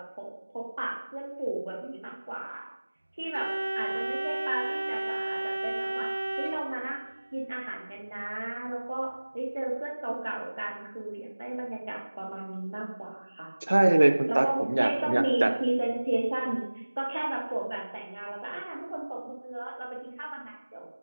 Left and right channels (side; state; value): both; inverted; correlation -1.00